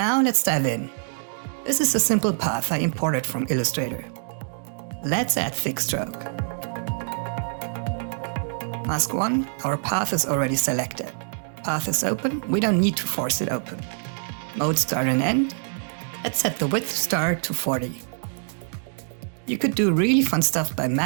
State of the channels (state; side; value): silent; left; digital silence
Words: let's dive in. This is a simple path I imported from Illustrator. Let's add Thicc Stroke. Mask 1, our path is already selected. Path is open, we don't need to force it open. Mode start and end. Let's set the width start to 40. You could do really fun stuff by